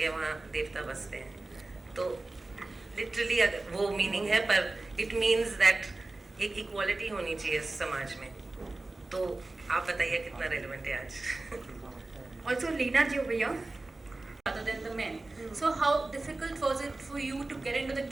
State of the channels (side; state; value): left; quieter; 3.1 dB